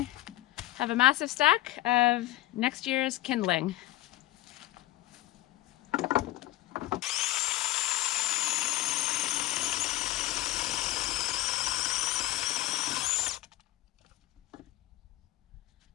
have a massive stack of next year's kindling.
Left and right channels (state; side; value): quieter; right; 16.4 dB